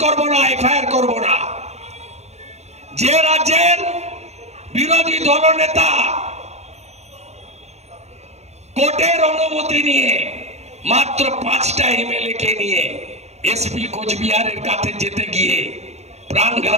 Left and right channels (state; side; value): late; left; 0.32 ms